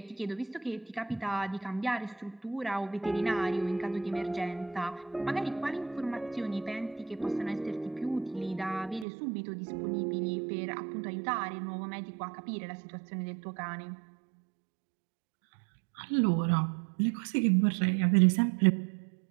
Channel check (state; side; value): drops out; left; at 9.1 s